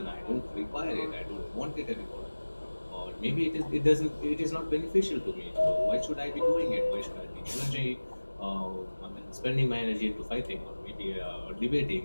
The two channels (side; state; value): both; inverted; correlation -1.00